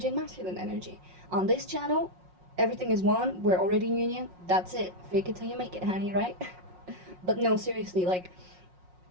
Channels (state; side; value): late; left; 5.5 ms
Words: and masculine energy. On this channel, everything is one. We're already in union. That's it. Fake it till you make it, honey, right? But no, seriously, like,